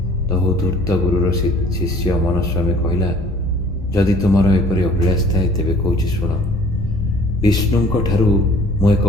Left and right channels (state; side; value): normal; both; correlation 0.53